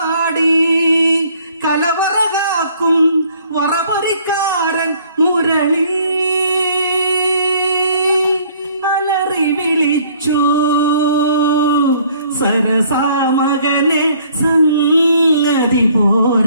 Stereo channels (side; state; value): both; inverted; correlation -0.59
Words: കലവറകാക്കും വറപറിക്കാരൻ മുരളി അലറി വിളിച്ചു സരസാമകനെ സംഗതി